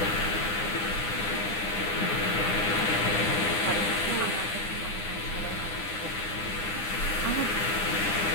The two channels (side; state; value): right; late; 9.9 ms